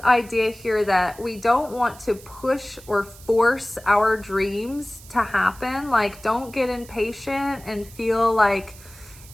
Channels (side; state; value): right; noise; hiss, 21 dB below the sound